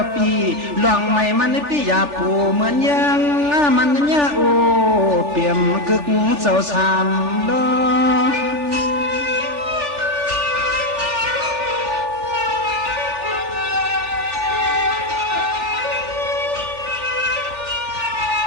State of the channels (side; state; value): left; late; 3.4 ms